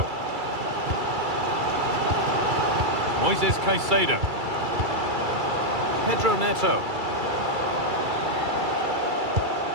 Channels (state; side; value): late; left; 2.3 ms